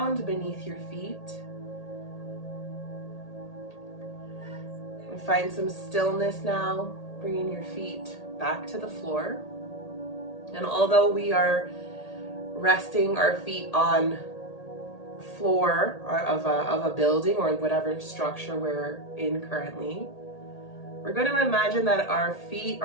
beneath your feet. And find some stillness now, bringing your feet back to the floor. And although we are resting our feet on floor of a building or whatever structure we're in currently, we're going to imagine that our feet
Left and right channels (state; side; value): late; right; 1.8 ms